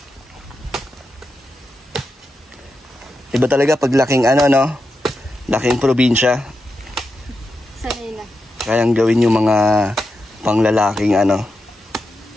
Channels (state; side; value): normal; both; correlation 0.88